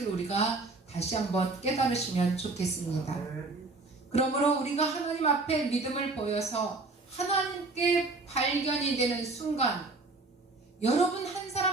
우리가 다시 한번 깨달으시면 좋겠습니다. 그러므로 우리가 하나님 앞에 믿음을 보여서 하나님께 발견이 되는 순간, 여러분 한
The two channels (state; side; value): quieter; left; 3.5 dB